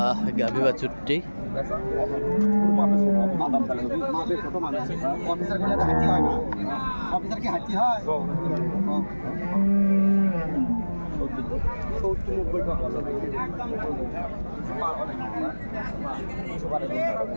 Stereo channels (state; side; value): inverted; both; correlation -1.00